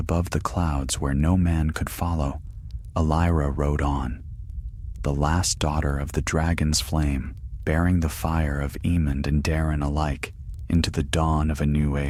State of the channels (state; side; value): identical; both; correlation 1.00